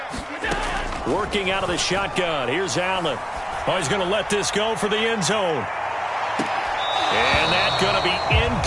Working out of the shotgun. Here's Allen. Oh, he's going to let this go for the end zone. And that's going to be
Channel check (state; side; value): identical; both; correlation 1.00